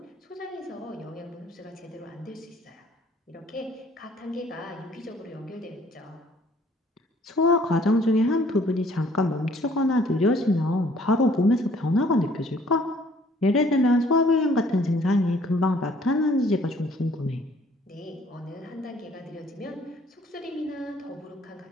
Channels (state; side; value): normal; both; correlation 0.59